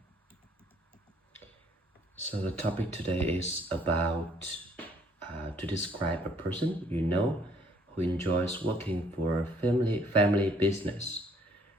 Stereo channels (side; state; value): both; normal; correlation 0.63